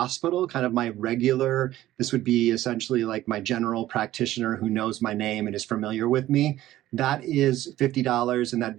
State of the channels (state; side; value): quieter; left; 14.7 dB